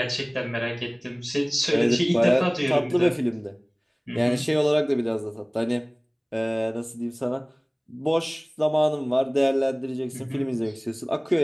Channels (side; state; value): both; identical; correlation 1.00